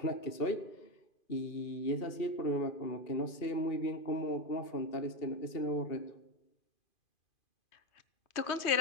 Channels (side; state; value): right; late; 2.5 ms